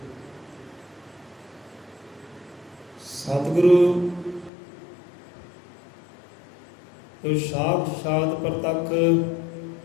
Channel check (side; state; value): right; drops out; at 4.5 s